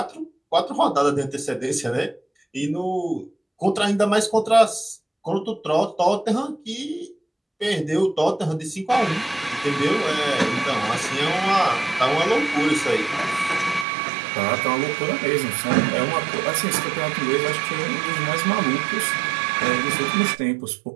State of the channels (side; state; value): left; drops out; at 13.9 s